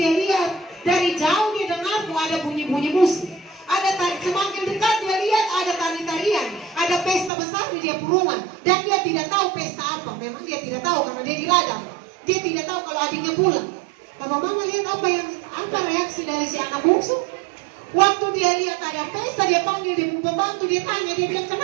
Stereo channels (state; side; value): drops out; left; at 7.3 s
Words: lihat dari jauh dia dengar ada bunyi-bunyi musik. Ada semakin dekat dia lihat ada tari-tarian, ada pesta besar di dia rumah. Dan dia tidak tahu pesta apa. Memang dia tidak tahu karena dia di ladang. Dia tidak tahu kalau adiknya pulang. Bapak mama lihat apa reaksi dari si anak bungsu. Waktu dia lihat ada pesta, dia panggil dia pembantu, dia tanya, dia bilang